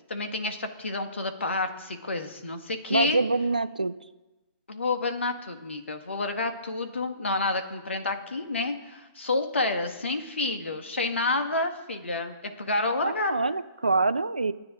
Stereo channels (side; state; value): both; inverted; correlation -0.54